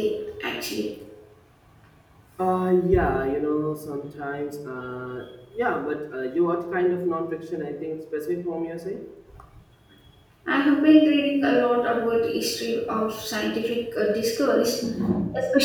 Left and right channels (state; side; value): identical; both; correlation 1.00